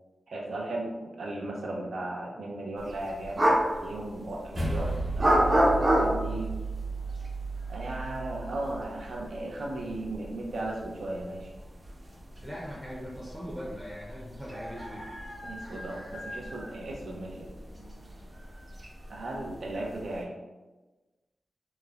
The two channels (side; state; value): both; normal; correlation 0.91